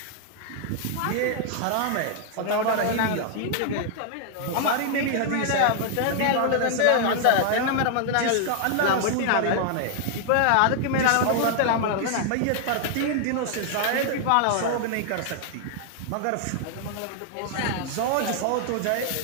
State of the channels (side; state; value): both; different; correlation 0.00